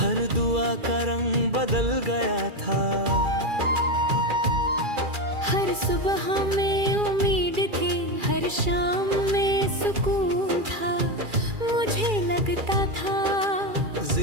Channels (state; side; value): late; left; 2.4 ms